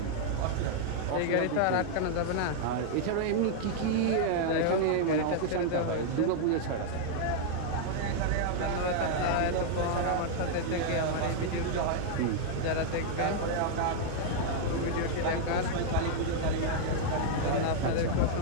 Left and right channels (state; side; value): different; both; correlation -0.01